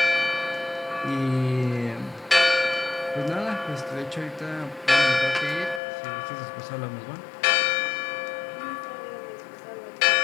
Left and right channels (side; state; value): right; drops out; at 5.8 s